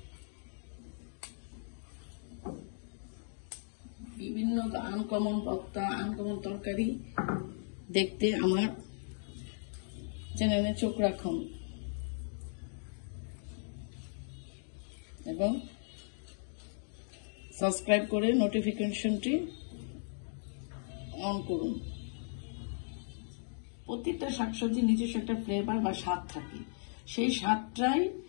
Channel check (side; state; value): right; silent; digital silence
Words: বিভিন্ন আনকমন ভর্তা, আনকমন তরকারি দেখতে আমার চ্যানেলে চোখ রাখুন এবং সাবস্ক্রাইব করে নোটিফিকেশনটি অন করুন। প্রত্যেকটা শাকসবজি নিজস্ব একটা ফ্লেভার বা স্বাদ থাকে, সেই স্বাদটাই